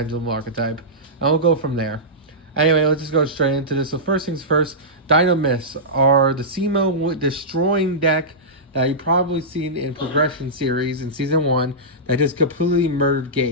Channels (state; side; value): normal; both; correlation -0.15